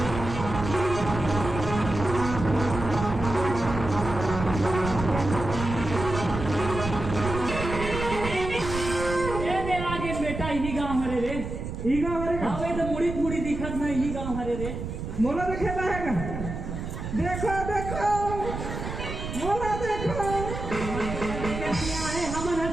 ईगा हरे हाँ वे तो मुड़ी मुड़ी दिखत ना यही गाँव हरे रे मोला देखे रहेगा देखो देखो मोला देखो क्या है हमन हर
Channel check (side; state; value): right; noise; rumble, 6 dB below the sound